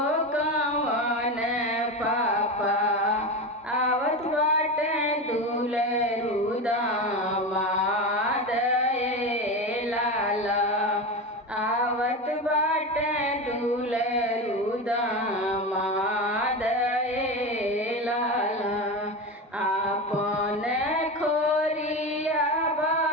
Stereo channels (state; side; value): normal; both; correlation 0.22